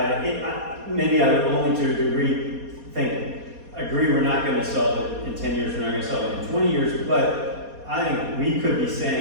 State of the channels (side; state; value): left; late; 4.2 ms